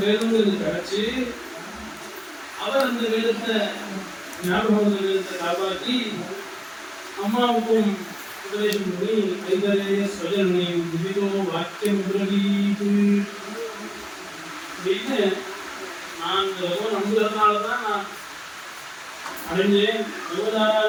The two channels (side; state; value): both; identical; correlation 1.00